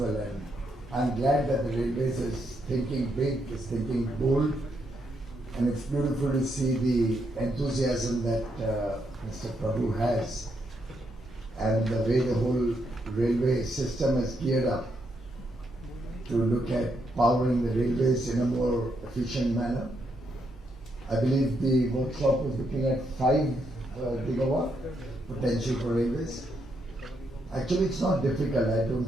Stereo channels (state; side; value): normal; both; correlation 0.78